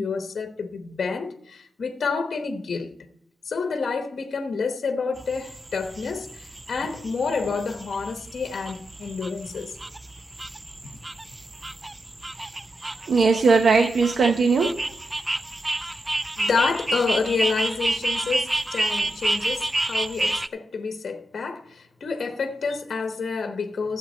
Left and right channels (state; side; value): normal; both; correlation 0.86